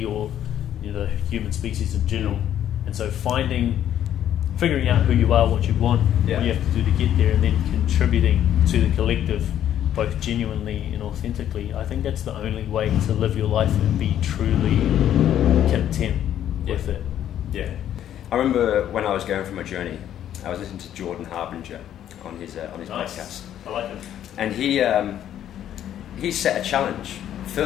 or the human species in general. And so figuring out who you are, what you want, what you have to do to get there, and then contributing to the collective, both genuinely and authentically. I think that's the only way to live your life and be truly content with it. I remember when I was going through my journey, I was listening to Jordan Harbinger on his podcast. I like him. And he set a challenge.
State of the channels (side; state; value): right; quieter; 10.8 dB